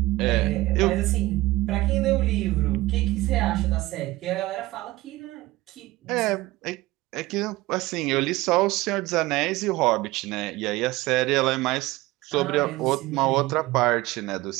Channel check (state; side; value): quieter; left; 19.0 dB